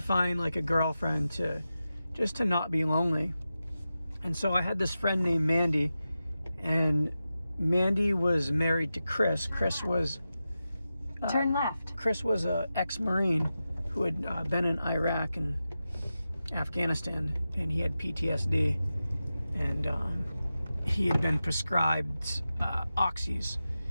like a girlfriend to not be lonely. And so I had this friend named Mandy, and Mandy was married to Chris. Chris was turn left. Chris was a ex-Marine who had been in Iraq and Afghanistan, and he had PTSD, and he had been prescribed oxys,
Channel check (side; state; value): both; inverted; correlation -0.92